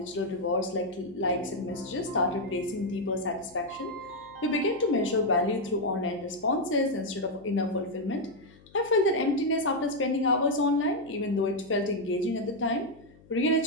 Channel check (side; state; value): left; noise; hum, 25 dB below the sound